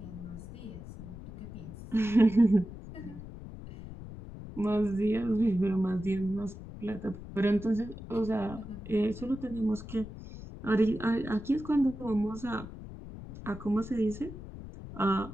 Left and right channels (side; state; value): left; noise; rumble, 12 dB below the sound